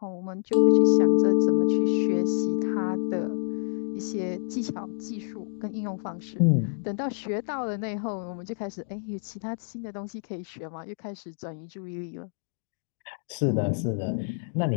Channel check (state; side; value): silent; right; 60 dB below the other